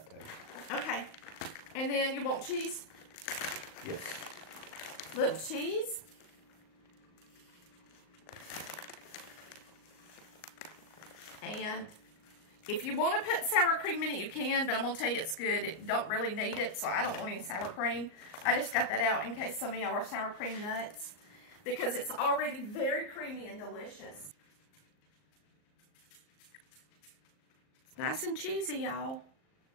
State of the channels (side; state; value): right; late; 38 ms